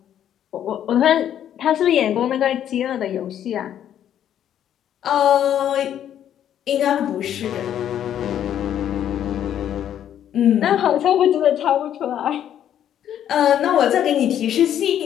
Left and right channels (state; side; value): quieter; right; 10.3 dB